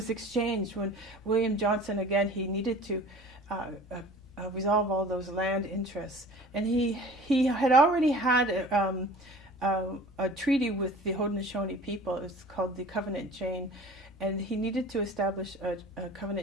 exchanged when William Johnson, again, he needed to resolve all those land interests. And he had already had a treaty with the Haudenosaunee people. It's called the Covenant Chain. And he needed to establish a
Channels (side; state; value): both; normal; correlation 0.44